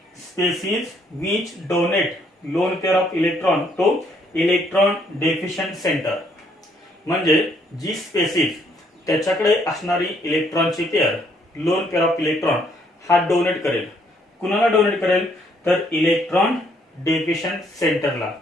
species which donate lone pair of electron to electron deficient center, म्हणजे जी spaces त्याच्याकडे असणारी इलेक्ट्रॉनची pair loan pair of electron हा donate करेल. कुणाला डोनेट करेल तर इलेक्ट्रॉन डेफिशियंट सेंटरला.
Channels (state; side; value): normal; both; correlation 0.68